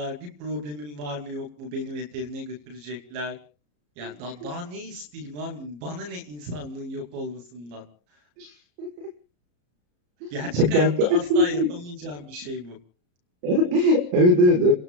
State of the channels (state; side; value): late; left; 34 ms